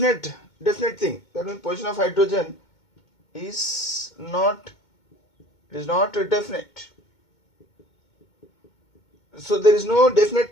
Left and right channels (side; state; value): right; late; 2.2 ms